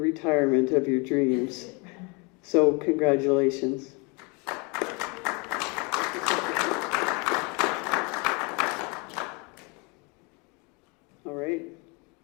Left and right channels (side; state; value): right; quieter; 30.4 dB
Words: of your dreams. So congratulations. All right.